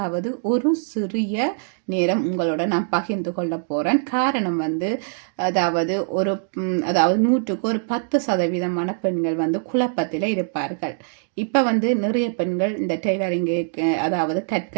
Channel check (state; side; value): silent; left; digital silence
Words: ஒரு சிறிய நேரம் உங்களோட நான் பகிர்ந்து கொள்ள போறேன். காரணம் அதாவது அதாவது 100க்கு ஒரு 10% பெண்கள் குழப்பத்தில் இருப்பார்கள். இப்ப நிறைய பெண்கள் இந்த டெய்லரிங்கு அதாவது